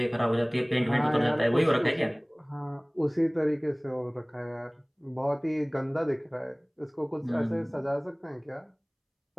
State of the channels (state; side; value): identical; both; correlation 1.00